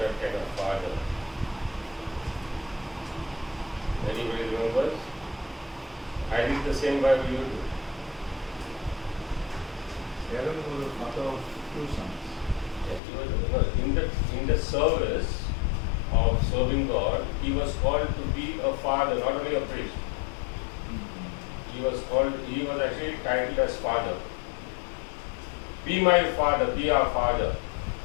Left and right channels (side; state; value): right; drops out; at 13.0 s